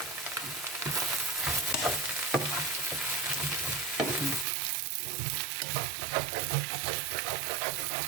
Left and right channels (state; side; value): drops out; left; at 4.5 s